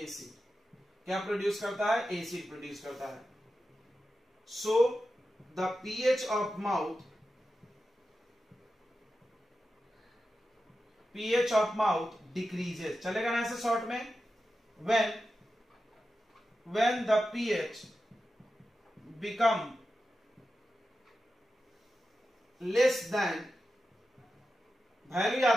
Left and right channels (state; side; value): normal; both; correlation 0.91